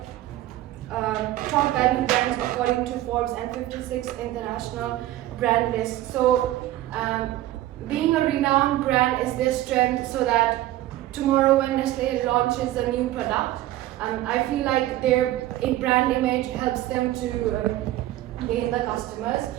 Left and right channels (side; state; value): left; quieter; 15.0 dB